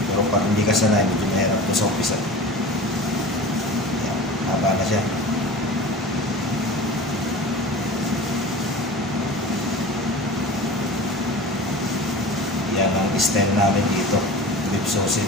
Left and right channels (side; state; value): both; normal; correlation 0.35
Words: Pero pag hindi ka sanay, medyo mahirap ito sa umpisa. Yan, haba na siya. Yan ang style namin dito, beef